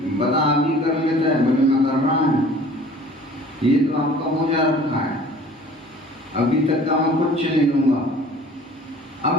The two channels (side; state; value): both; normal; correlation 0.48